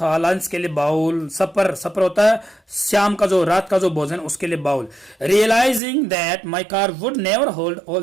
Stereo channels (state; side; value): drops out; left; at 5.8 s